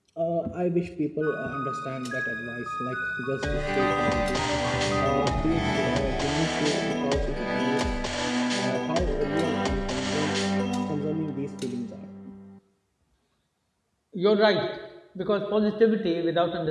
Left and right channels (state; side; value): identical; both; correlation 1.00